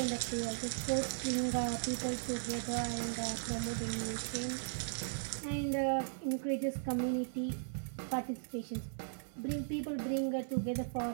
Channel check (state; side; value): silent; left; 53 dB below the other